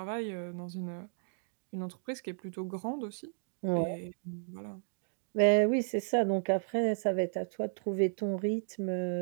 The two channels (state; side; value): silent; left; digital silence